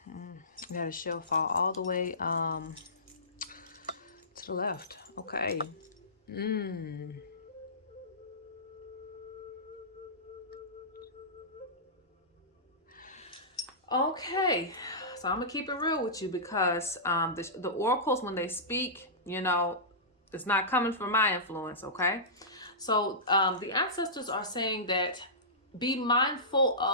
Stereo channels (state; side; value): normal; both; correlation -0.19